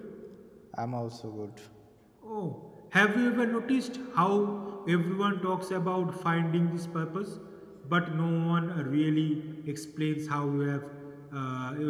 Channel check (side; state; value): both; identical; correlation 1.00